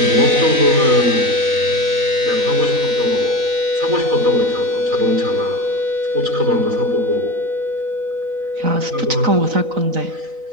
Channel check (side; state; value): left; late; 4.0 ms